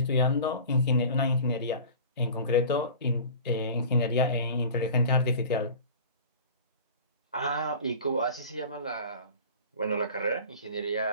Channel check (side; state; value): both; inverted; correlation -0.40